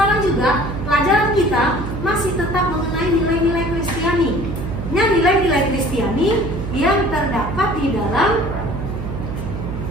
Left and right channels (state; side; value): noise; right; hum, 6 dB below the sound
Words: juga pelajaran kita masih tetap mengenai nilai-nilai Kristiani. Nah, nilai-nilai Kristiani yang terdapat di